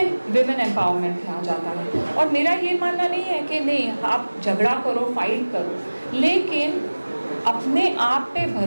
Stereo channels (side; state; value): both; inverted; correlation -1.00